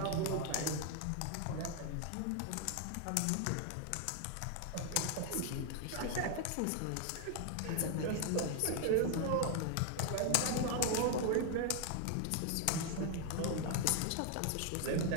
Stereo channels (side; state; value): both; different; correlation 0.01